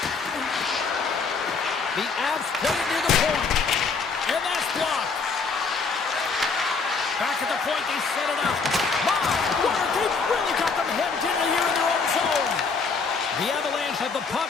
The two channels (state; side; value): quieter; right; 4.8 dB